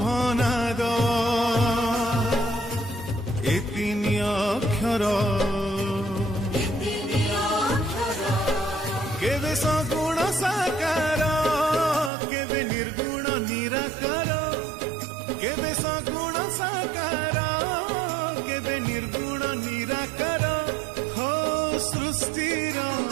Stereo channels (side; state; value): left; drops out; at 12.1 s